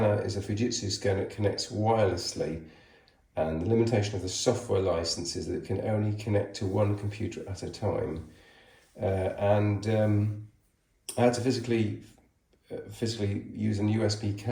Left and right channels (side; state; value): both; identical; correlation 1.00